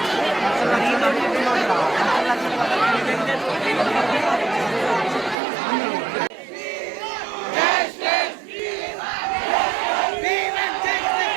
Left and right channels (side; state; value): left; drops out; at 5.4 s